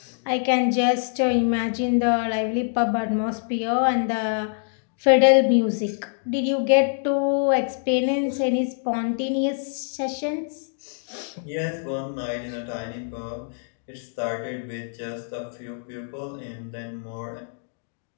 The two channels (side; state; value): right; silent; digital silence